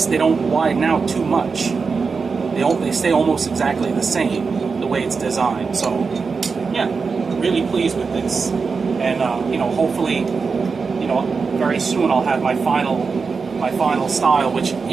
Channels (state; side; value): quieter; left; 4.9 dB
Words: widen out too much. They stay almost exactly the same, the way it's designed. So, yeah, really pleased with this. And, hopefully, very soon I'll have my final style, which,